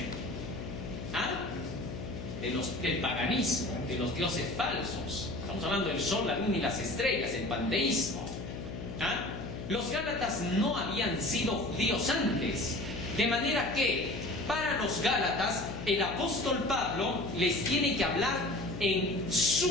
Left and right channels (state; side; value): noise; left; hum, 8 dB below the sound